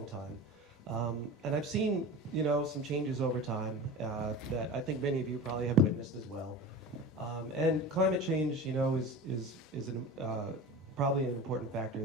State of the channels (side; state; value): both; normal; correlation 0.32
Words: time. And I've seen, some changes over time that I think many of you probably have witnessed as well. And climate change, is probably an important factor